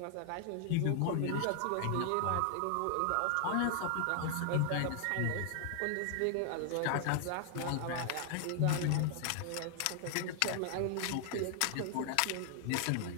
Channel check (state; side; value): different; both; correlation 0.00